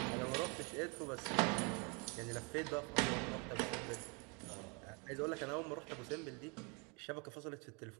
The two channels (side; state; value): left; quieter; 32.7 dB